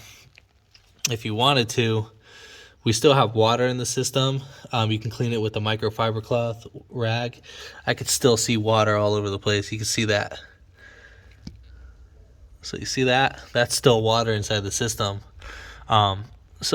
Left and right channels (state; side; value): identical; both; correlation 1.00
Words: if you wanted to, we still have water in the system. You can clean it with a microfiber cloth rag. I could still see water all over the place. You can see that. So you see that? That's still water inside the system.